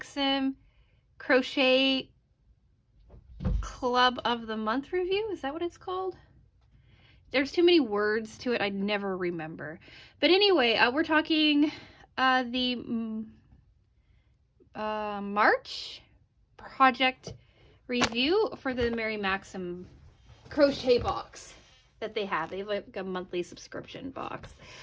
Crochet Club of the Month review. Is that what it's called? There's too many words to it, I never remember. But anyway, we're talking the March project review for the Mary Maxim crochet box that they have. They have like a monthly subscription box.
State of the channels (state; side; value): identical; both; correlation 1.00